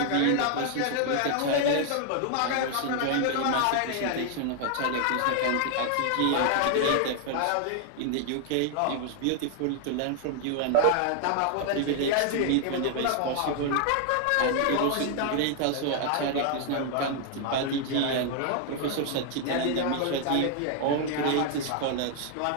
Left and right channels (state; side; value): different; both; correlation 0.00